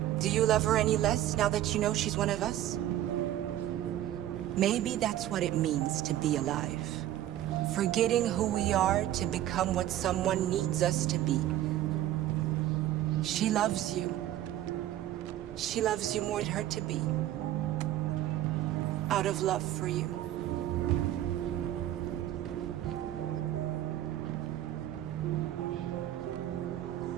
Do you love her any less now that you know she's one of us? Maybe that's what it means to be alive. Forgetting who we are to become what someone needs us to be. She loves you. She loves you more than her to be. Out of love for you.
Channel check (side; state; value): left; quieter; 13.0 dB